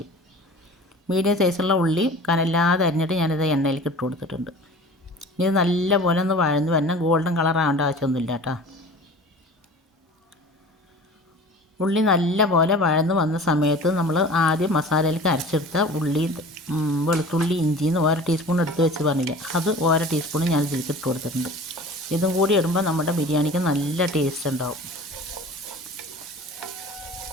മീഡിയം സൈസുള്ള ഉള്ളി കനല്ലാതെ അരിഞ്ഞിട്ട് ഞാനിത് എണ്ണയിലേക്ക് ഇട്ട് കൊടുത്തിട്ടുണ്ട്. ഇത് നല്ലപോലെ ഒന്ന് വഴന്ന് വരണം. ഗോൾഡൻ കളർ ആവേണ്ട ആവശ്യമൊന്നുമില്ല കേട്ടോ. ഉള്ളി നല്ലപോലെ വഴന്ന് വന്ന സമയത്ത് നമ്മൾ ആദ്യം മസാലയിലേക്ക് അരച്ചെടുത്ത ഉള്ളി, വെളുത്തുള്ളി, ഇഞ്ചിന്ന് 1 ടീസ്പൂൺ എടുത്ത് വെച്ച് പറഞ്ഞില്ലേ, അത് 1 ടീസ്പൂൺ ഞാൻ ഇതിലേക്ക് ഇട്ട് കൊടുത്തിട്ടുണ്ട്. ഇതും കൂടി ഇടുമ്പോൾ നമ്മുടെ ബിരിയാണിക്ക് നല്ല ടേസ്റ്റ് ഉണ്ടാവും.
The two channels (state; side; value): normal; both; correlation 0.41